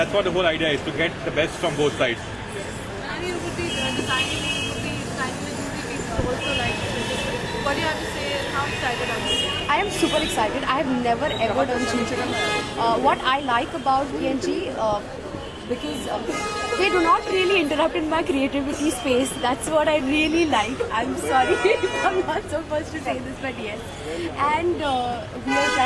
what the whole idea is, to get the best from both sides. And you would be designing, you would be designing the jewelry pieces also like this. What do you have to say and how excited are you? I am super excited. I have never ever done jewelry. What I like about PNG, because they do not really interrupt in my creativity space. That's what I really like. I'm sorry if I'm not supposed to say this, but yes. And we are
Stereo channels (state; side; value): identical; both; correlation 1.00